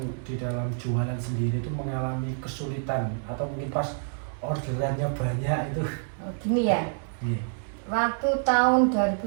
di dalam jualan sendiri itu mengalami kesulitan atau mungkin pas orderannya banyak itu? Gini ya, waktu tahun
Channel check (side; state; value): left; silent; 60 dB below the other